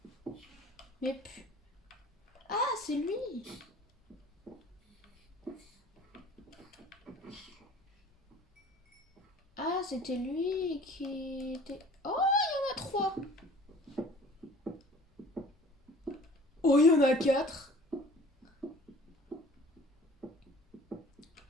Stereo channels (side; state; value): both; normal; correlation 0.48